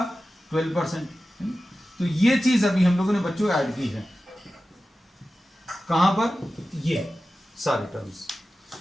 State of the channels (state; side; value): normal; both; correlation 0.94